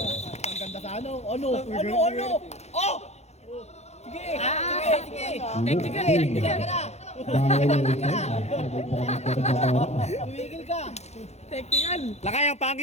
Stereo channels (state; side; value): late; right; 0.32 ms